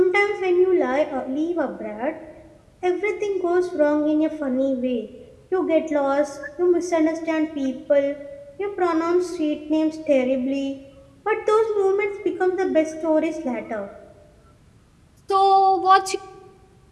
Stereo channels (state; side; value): identical; both; correlation 1.00